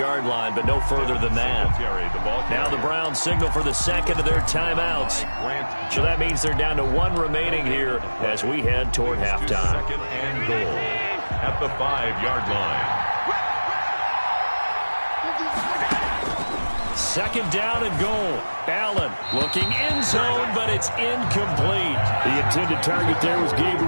line, but no further than that. Now the Browns signal for the second of their timeouts. So that means they're down to 1 remaining here as we head toward halftime. 2nd and goal at the 5-yard line. 2nd down and goal. Allen looking end zone, but it's incomplete. The intended target there was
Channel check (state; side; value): inverted; both; correlation -1.00